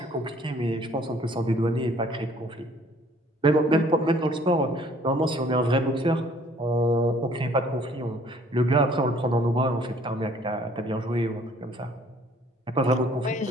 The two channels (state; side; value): normal; both; correlation 0.58